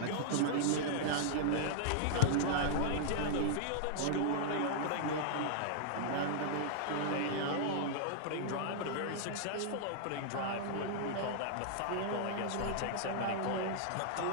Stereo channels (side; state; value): both; different; correlation -0.01